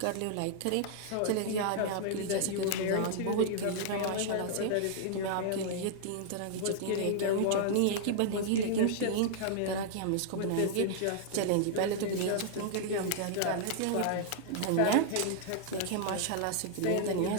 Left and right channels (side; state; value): both; different; correlation -0.01